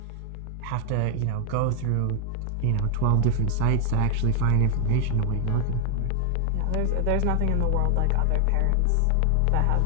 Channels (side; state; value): both; different; correlation 0.00